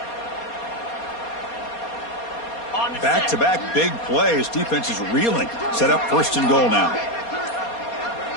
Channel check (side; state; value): right; late; 4.2 ms